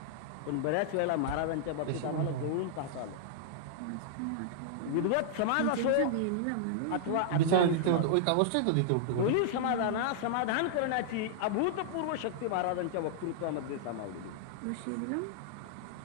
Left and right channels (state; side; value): different; both; correlation -0.01